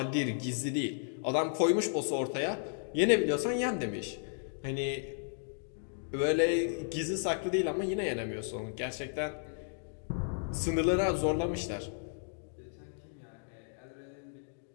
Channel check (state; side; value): silent; right; digital silence